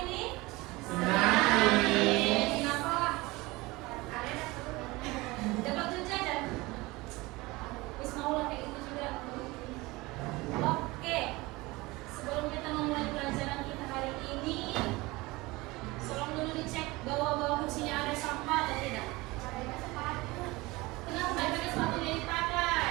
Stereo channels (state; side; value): quieter; left; 22.0 dB